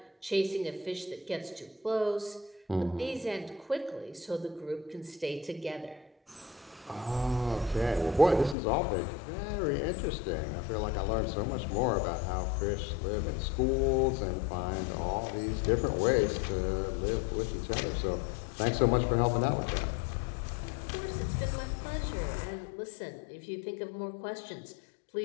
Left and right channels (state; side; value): drops out; right; at 8.6 s